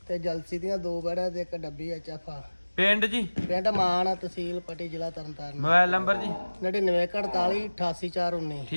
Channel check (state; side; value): inverted; both; correlation -1.00